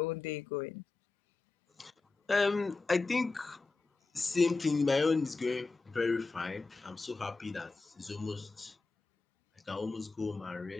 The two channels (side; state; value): right; quieter; 3.8 dB